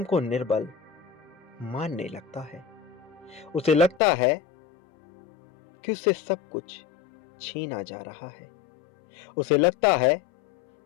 को निर्बल मानने लगता है। उसे लगता है कि उससे सब कुछ छीना जा रहा है। उसे लगता है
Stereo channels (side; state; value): right; drops out; at 4.0 s